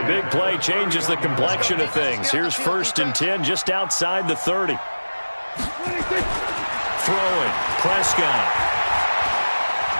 big play changes the complexion of things. Here's 1st and 10 just outside the 30. Throwing, Prescott.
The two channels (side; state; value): both; inverted; correlation -1.00